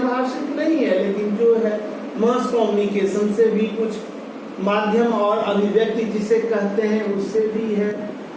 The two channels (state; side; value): identical; both; correlation 1.00